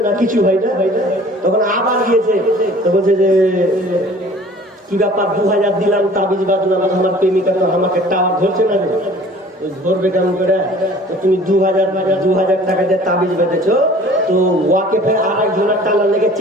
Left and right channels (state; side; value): normal; both; correlation 0.49